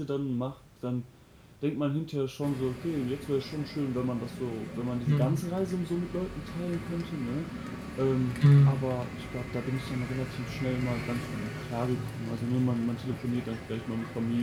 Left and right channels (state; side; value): identical; both; correlation 1.00